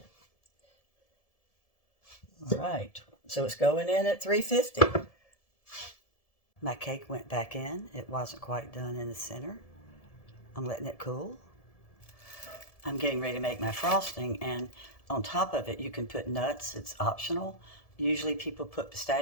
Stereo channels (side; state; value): right; late; 1.7 ms